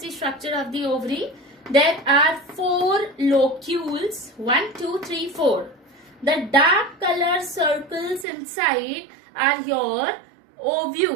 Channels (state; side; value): drops out; left; at 8.2 s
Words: the structure of the ovary. There are 4 locules. 1, 2, 3, 4. The dark color circles inside are your